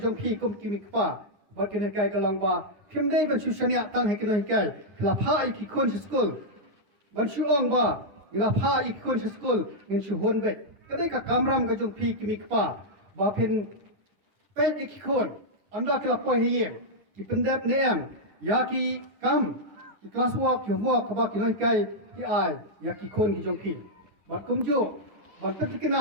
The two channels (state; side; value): late; left; 10 ms